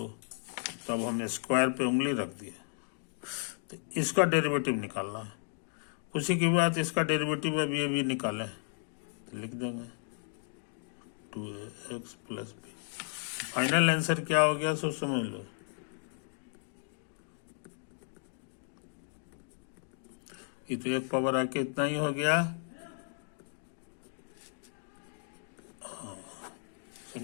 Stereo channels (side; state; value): right; silent; 55 dB below the other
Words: तब हम स्क्वायर पे उंगली रख दिए। तो इसका डेरिवेटिव निकालना है। उसी के बाद इसका डेरिवेटिव अभी निकालें, तो लिख देंगे 2x plus B. Final answer क्या हो गया सो समझ लो। ये तो एक पावर आके इतना ही हो गया,